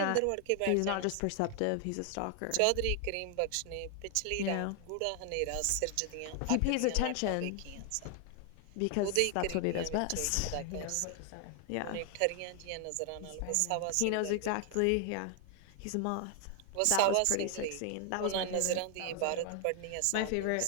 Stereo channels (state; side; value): different; both; correlation 0.00